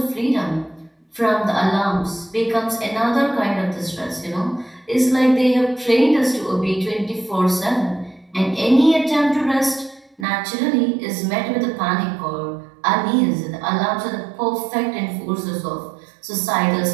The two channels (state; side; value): drops out; left; at 10.2 s